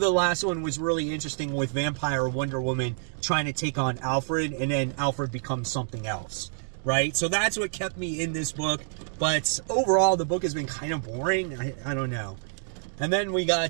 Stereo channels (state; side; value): silent; left; digital silence